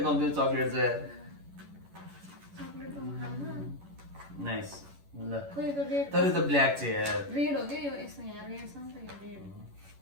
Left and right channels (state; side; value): late; left; 11 ms